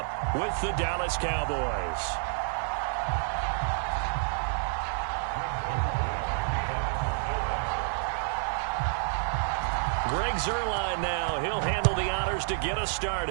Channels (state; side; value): silent; left; 58 dB below the other